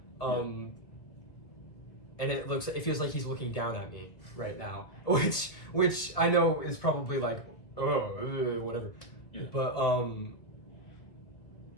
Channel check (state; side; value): late; right; 1.9 ms